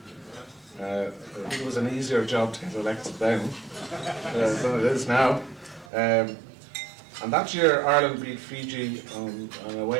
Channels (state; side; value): drops out; left; at 5.9 s